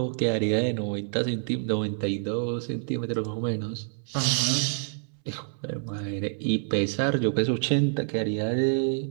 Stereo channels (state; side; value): silent; left; 60 dB below the other